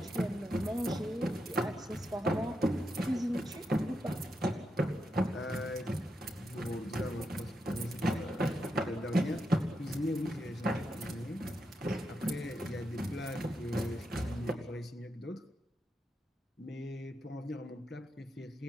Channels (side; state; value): both; normal; correlation 0.85